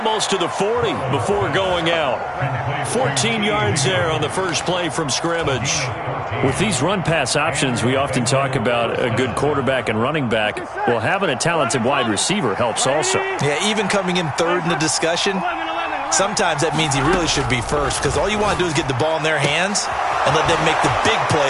to the 40 before going out. 14 yards there on the first play from scrimmage. With these run-pass options, we often talk about a good quarterback and running back. Well, having a talented wide receiver helps also. Yeah, even coming in third in the discussion, sometimes that means he really should be first, because all you want to do is get the ball in their hands and let them make the big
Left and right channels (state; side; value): identical; both; correlation 1.00